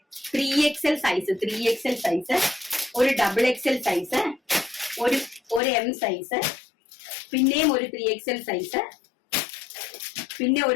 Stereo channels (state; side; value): drops out; right; at 5.6 s